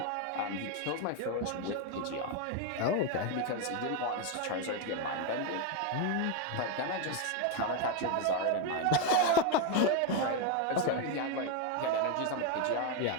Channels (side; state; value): both; different; correlation 0.02